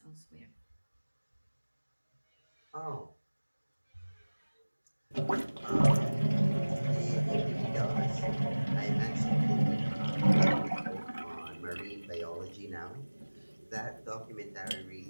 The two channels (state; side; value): inverted; both; correlation -1.00